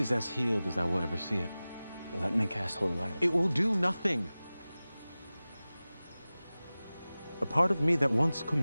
as healed as I will ever see it. Let me cast holy light. It will do nothing. A part of me that once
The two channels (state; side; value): inverted; both; correlation -0.97